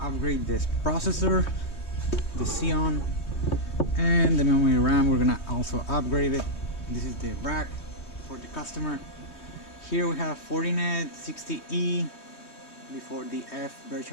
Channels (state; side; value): late; right; 3.2 ms